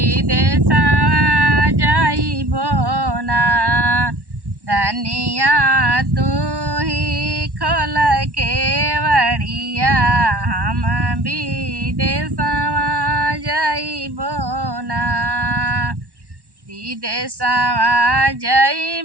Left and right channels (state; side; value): late; left; 1.1 ms